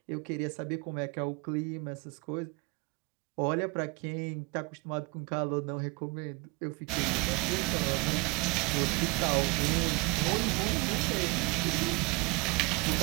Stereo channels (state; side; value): quieter; left; 26.6 dB